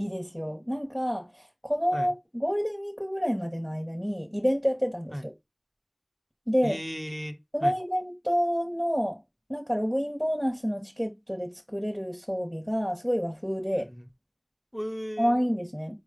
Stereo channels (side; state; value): both; identical; correlation 1.00